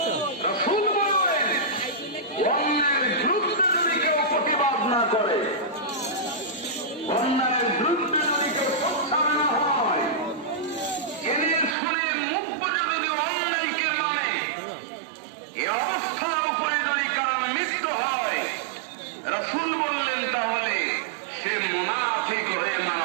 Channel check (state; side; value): drops out; left; at 11.8 s